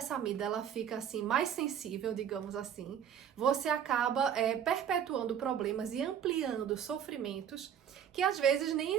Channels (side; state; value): left; quieter; 8.9 dB